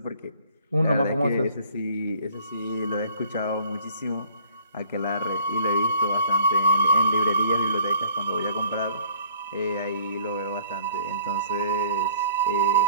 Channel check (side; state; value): both; inverted; correlation -0.56